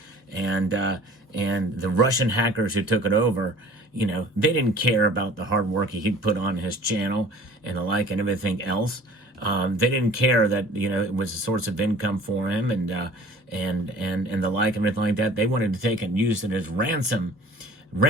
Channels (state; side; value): normal; both; correlation 0.47